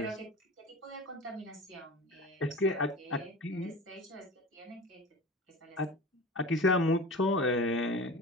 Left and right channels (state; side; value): normal; both; correlation 0.33